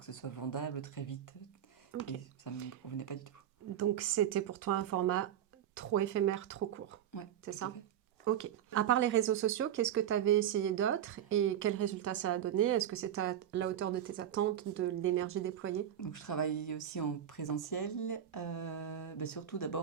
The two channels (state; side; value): quieter; left; 10.3 dB